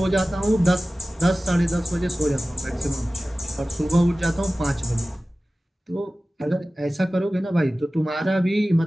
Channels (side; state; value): both; normal; correlation 0.97